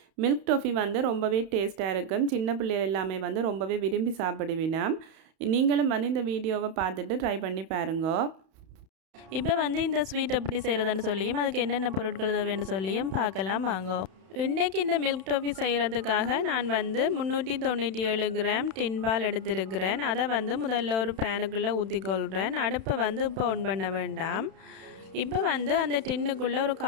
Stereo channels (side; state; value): left; late; 31 ms